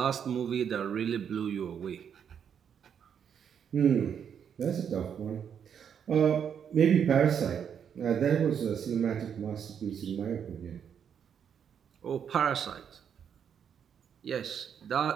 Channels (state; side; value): quieter; left; 8.0 dB